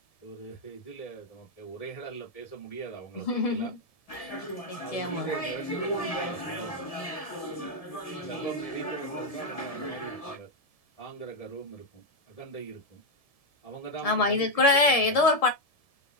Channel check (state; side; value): late; right; 1.7 ms